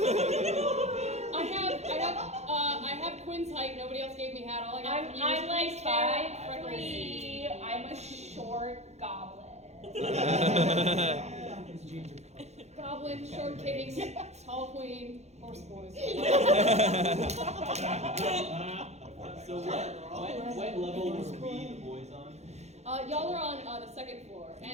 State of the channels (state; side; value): late; left; 0.32 ms